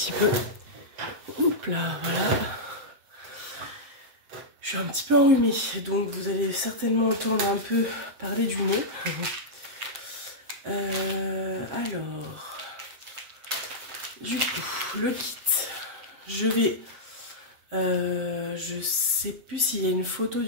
peu. Hop là, voilà. Je suis un petit peu enrhumée, donc vous allez certainement entendre un peu parler du nez. Alors, du coup, le kit, je sais plus s'il y a une photo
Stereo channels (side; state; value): left; late; 7.5 ms